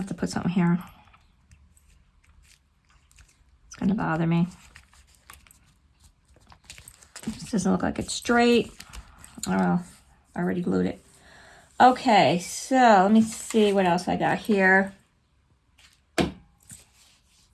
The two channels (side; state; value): both; identical; correlation 1.00